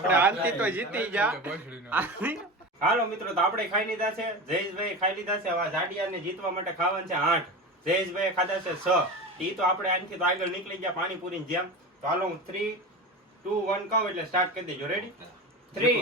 આજથી તો જીતી જા. હાલો મિત્રો, તો આપણે ખાઈ લીધા છે. જયેશભાઈ ખાઈ લીધા છે. હવે જાડિયાને જીતવા માટે ખાવાનું છે 8. જયેશભાઈ ખાધા છે 6. ઈ તો આપણે આનથી તો આગળ નીકળી ગયા પાણીપુરીની જેમ. તો હાલો, હું 3, 2, 1 કહું એટલે સ્ટાર્ટ કરી દેજો. રેડી?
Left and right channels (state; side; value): normal; both; correlation 0.27